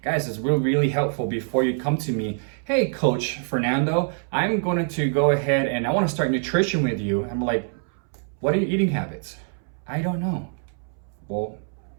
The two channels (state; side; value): silent; left; 62 dB below the other